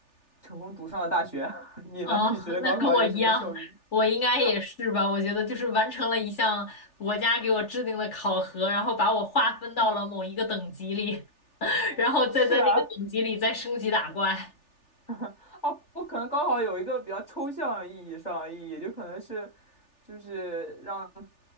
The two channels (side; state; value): right; late; 3.4 ms